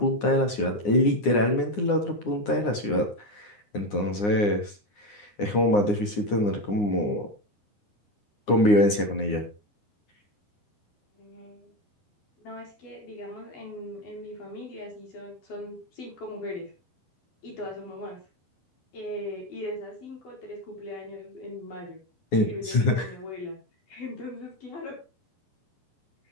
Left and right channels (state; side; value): late; right; 9.7 ms